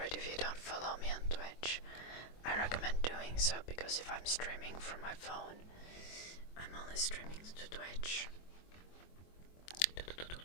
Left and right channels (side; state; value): right; late; 24 ms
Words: if you don't follow me on Twitch, I recommend doing so, because if I'm streaming from my phone, I'm only streaming to Twitch.